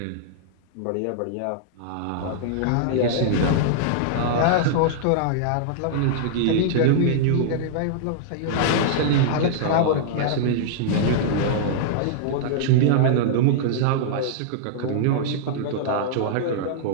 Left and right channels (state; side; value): different; both; correlation -0.02